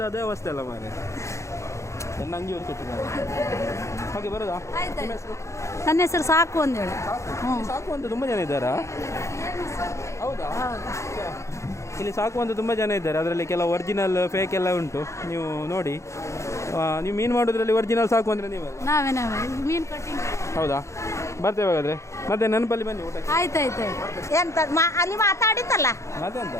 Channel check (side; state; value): right; late; 0.14 ms